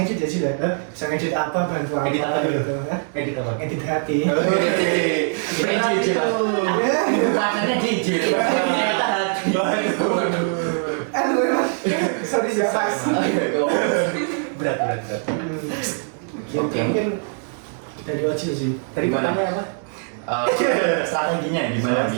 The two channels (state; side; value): silent; left; 56 dB below the other